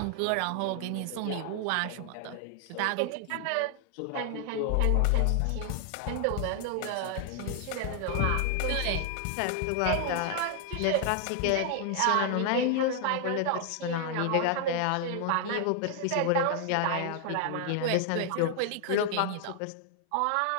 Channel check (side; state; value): both; different; correlation 0.00